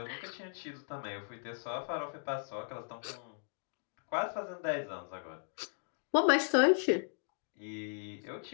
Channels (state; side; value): silent; right; digital silence